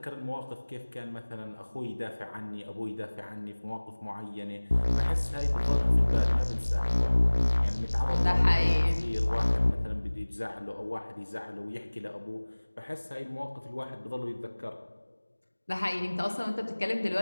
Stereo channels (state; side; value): inverted; both; correlation -1.00